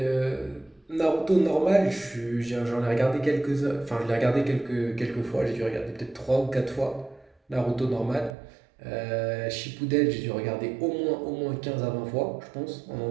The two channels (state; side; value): drops out; left; at 8.3 s